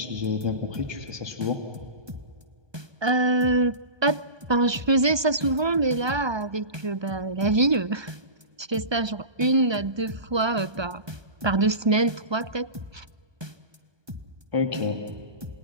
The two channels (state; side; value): late; left; 1.2 ms